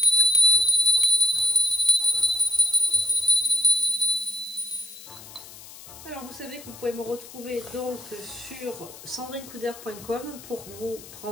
Alors vous savez que vous pouvez me retrouver donc sur sandrinecoudert.com pour vous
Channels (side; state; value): left; noise; hiss, 17 dB below the sound